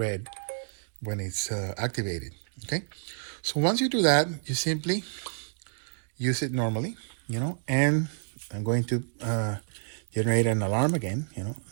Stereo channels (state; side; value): silent; left; digital silence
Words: when it's activated. Okay, so once you do that, you simply use it normally, and I'm going to generate an alarm again. I'm